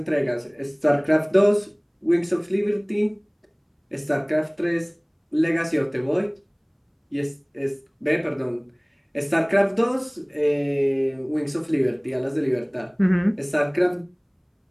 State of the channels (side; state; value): both; identical; correlation 1.00